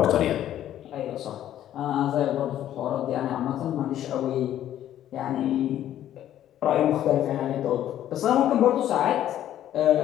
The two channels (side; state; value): right; quieter; 11.8 dB